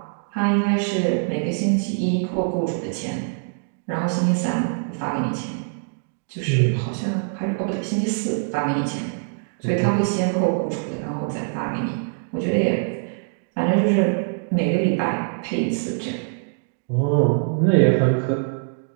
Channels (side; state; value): left; silent; digital silence